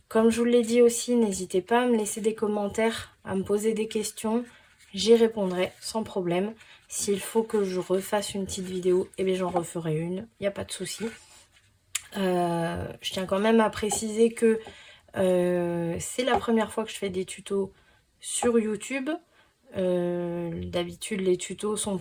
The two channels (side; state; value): both; identical; correlation 1.00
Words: Comme je vous l'ai dit aussi, n'hésitez pas à me laisser des commentaires, à me poser des questions. J'y répondrai sans problème. S'il faut que je refasse une petite vidéo, eh bien j'en referai une, il n'y a pas de souci. Je tiens quand même à préciser que c'est la première fois que je fais des tutos sur YouTube. D'habitude les tutos sont